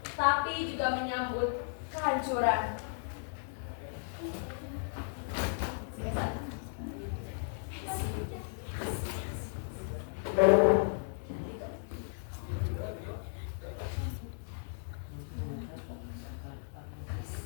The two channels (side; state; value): right; silent; 54 dB below the other